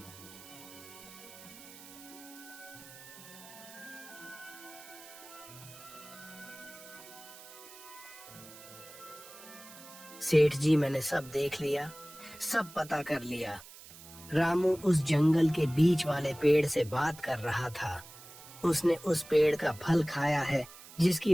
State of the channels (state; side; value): noise; right; hiss, 18 dB below the sound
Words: सेठ जी, मैंने सब देख लिया, सब पता कर लिया। रामू उस जंगल के बीच वाले पेड़ से बात कर रहा था। उसने उस पेड़ का फल खाया है,